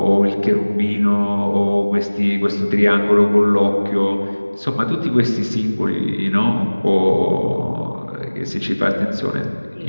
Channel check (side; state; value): both; inverted; correlation -1.00